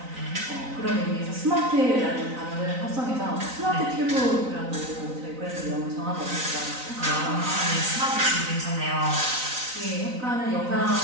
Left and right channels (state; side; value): late; left; 3.9 ms